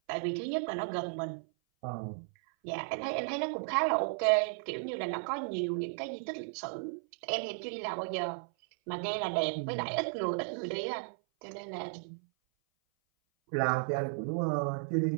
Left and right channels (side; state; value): left; silent; 55 dB below the other